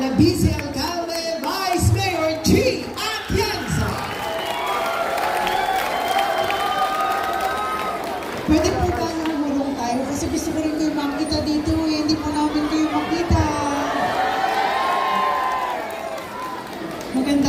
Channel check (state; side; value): identical; both; correlation 1.00